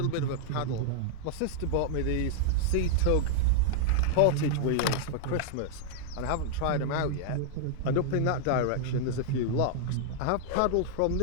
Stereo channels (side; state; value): both; different; correlation -0.01